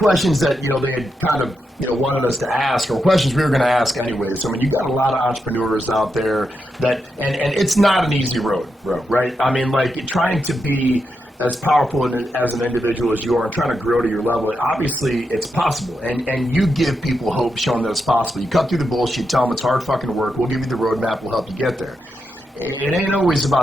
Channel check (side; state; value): both; normal; correlation 0.85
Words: that, they had kind of, wanted us to ask, or questions we were going to ask anyways. I mean, you got a lot of entrepreneurs out there that, and it's not an easy road, right? I mean, like trying to be as powerful as an individual as you are and trying to grow to your level, obviously it's possible. And you give people hope, showing that it's possible. You cut through the bullshit, tell them it's hard fucking work. We'll give you the roadmap. We'll help you get there. It ain't always